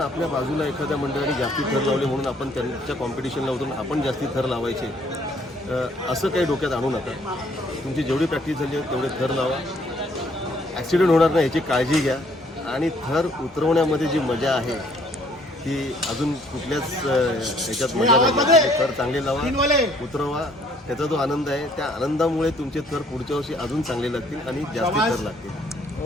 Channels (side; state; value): both; normal; correlation 0.63